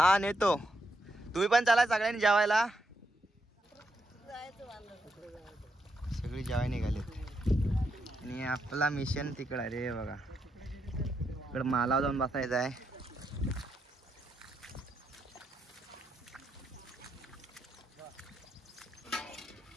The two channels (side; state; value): both; normal; correlation 0.81